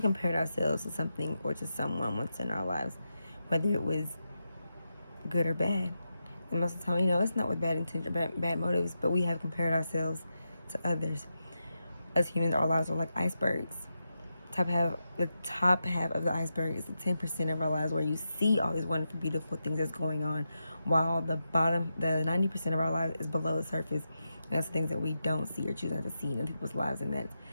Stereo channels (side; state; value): both; inverted; correlation -0.88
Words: compared ourselves to something or to someone once in our lives, whether it was good or bad. And most of the time, it's not with bad intention or bad motives, but we have compared ourselves to others. As humans, our lives are like icebergs. The top half of the iceberg is the 10% of our lives where you see all these wonderful, beautiful things that's going on, while the 90% of our lives is below the surface. And that's things that we don't see or choose not to see in people's lives, and that's